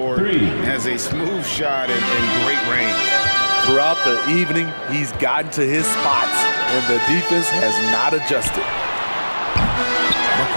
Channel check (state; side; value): inverted; both; correlation -1.00